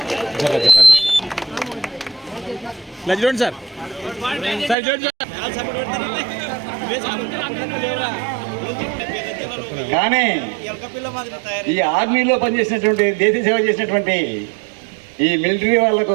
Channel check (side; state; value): left; drops out; at 4.8 s